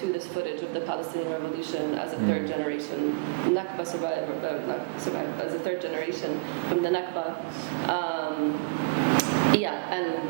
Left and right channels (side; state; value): left; quieter; 29.0 dB